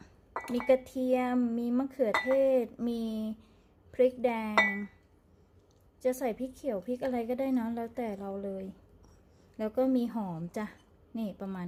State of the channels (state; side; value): identical; both; correlation 1.00